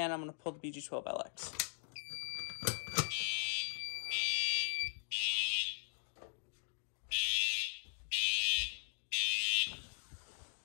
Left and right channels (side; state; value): right; silent; digital silence